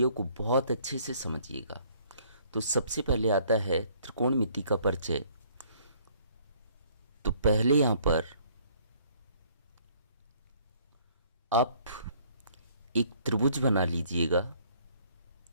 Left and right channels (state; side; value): inverted; both; correlation -0.60